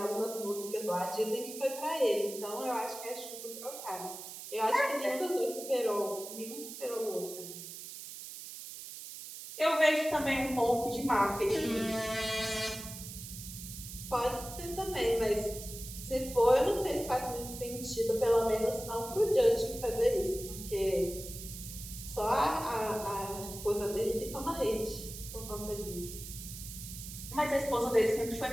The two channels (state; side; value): noise; right; hiss, 11 dB below the sound